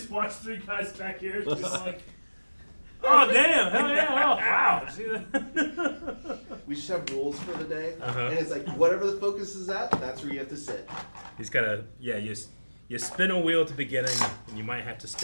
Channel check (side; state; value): both; inverted; correlation -1.00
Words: watch three guys back here. Just like, oh damn! Hell yeah! Oh wow! See that? We just have rules for the day, Uh-huh. and it's like whatever the focus is at, that's where you have to sit. He's gotta. Yeah. You spin a wheel at the beginning, and you might have to